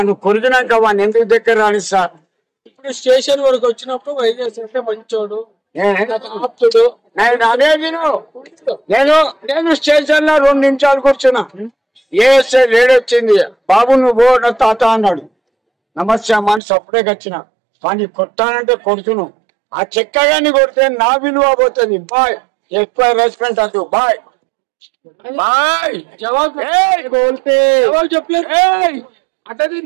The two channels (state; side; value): drops out; left; at 16.6 s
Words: కొరికినాక వాడిని ఎందుకు దగ్గర రానిస్తా ఇప్పుడు స్టేషన్ వరకు వచ్చినప్పుడు వైజాగ్ సత్య మంచోడు ఆప్తుడు అదే నేను స్టేషన్ లో 2 నిమిషాలు కూర్చున్నా ఏఎస్ఐ లేడీ వచ్చింది బాబు నువ్వు నా తాత అన్నాడు నమస్తే అమ్మ అని సప్పుడేకి వచ్చిన వాడిని కొట్టానంటే కొడుతున్నావు ఆ చెక్కగాని కొడితే నా విలువ పోతుంది బాయ్ ఎక్కువ రెస్పెక్ట్ అంటూ బాయ్ జవాబు జవాబు చెప్పలేదు అంటే